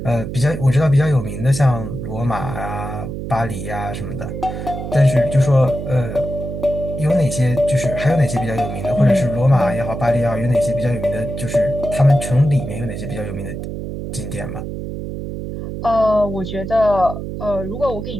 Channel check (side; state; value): right; noise; hum, 7 dB below the sound